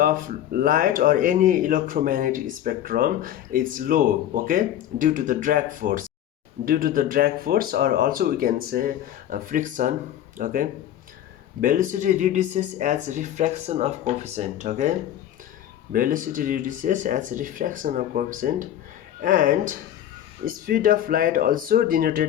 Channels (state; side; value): quieter; right; 11.5 dB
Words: light or any electromagnetic spectrum is low. Okay, due to the drag force, or also we can say friction. Okay, velocity reduces as refraction of coefficient. Okay, velocity reduces as refraction of coefficient, and speed of light also